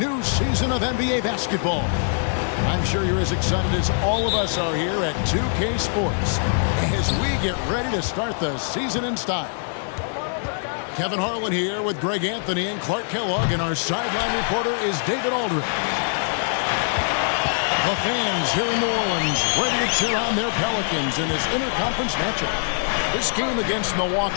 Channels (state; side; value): silent; right; 61 dB below the other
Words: season of NBA basketball. I'm sure you're as excited as all of us are here at 2K Sports as we get ready to start the season in style. Kevin Harlan here with Greg Anthony and Clark Kellogg, and our sideline reporter is David Aldridge. The fans here in New Orleans ready to cheer on their Pelicans in this interconference matchup. This game against